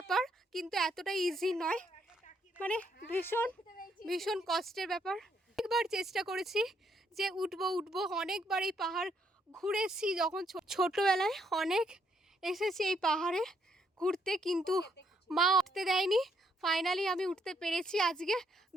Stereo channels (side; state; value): both; normal; correlation 0.73